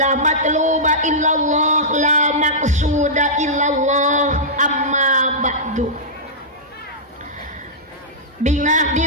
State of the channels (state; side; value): normal; both; correlation -0.14